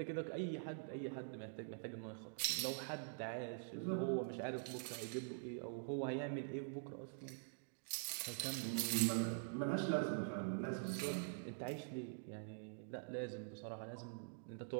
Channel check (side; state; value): left; silent; digital silence